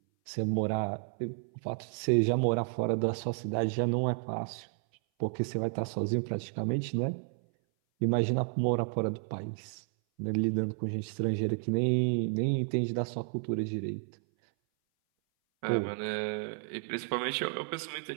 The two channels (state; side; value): silent; left; 57 dB below the other